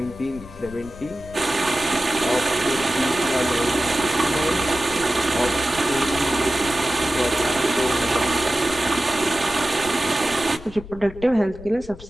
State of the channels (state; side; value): noise; left; rumble, 17 dB below the sound